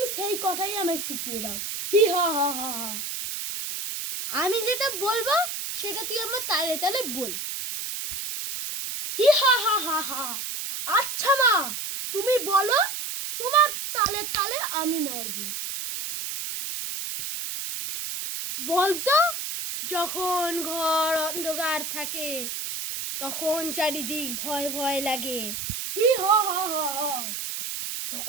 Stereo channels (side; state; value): right; noise; hiss, 5 dB below the sound